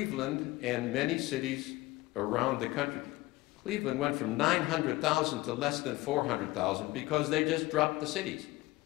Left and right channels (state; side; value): quieter; right; 19.5 dB